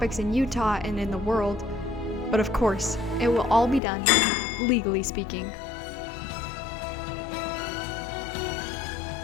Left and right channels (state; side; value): drops out; right; at 3.8 s